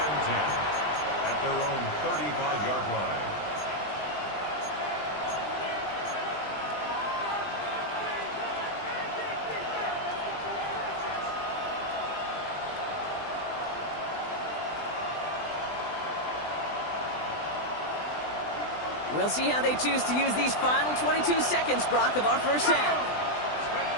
10 at their own 35-yard line. We'll see how they choose to use these final 22 seconds, Brock, of our first half.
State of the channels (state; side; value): late; right; 20 ms